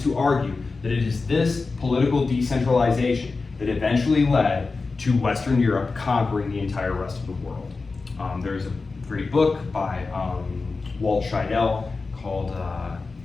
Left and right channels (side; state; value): right; quieter; 4.0 dB